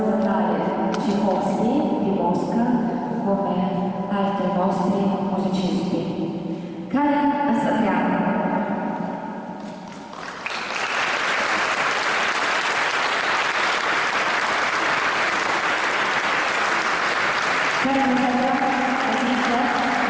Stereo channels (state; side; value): identical; both; correlation 1.00